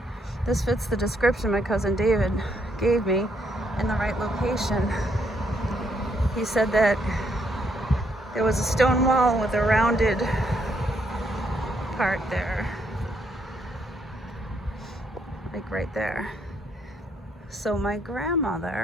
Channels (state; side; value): normal; both; correlation 0.73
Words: this fits the description my cousin David gave me in the right location. He said that there was a stone wall with a rounded part there, like right there. So my